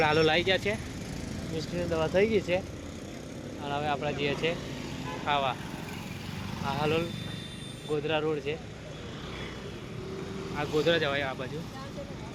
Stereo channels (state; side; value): identical; both; correlation 1.00